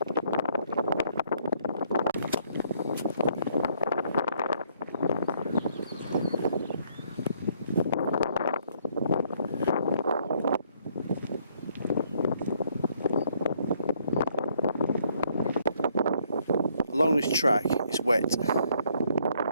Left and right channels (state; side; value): inverted; both; correlation -0.67